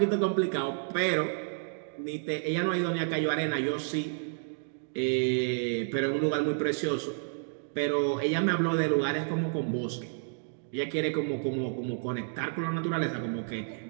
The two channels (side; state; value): left; silent; digital silence